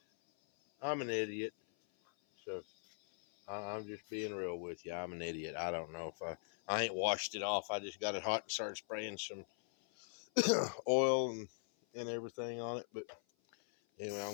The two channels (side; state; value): right; silent; 51 dB below the other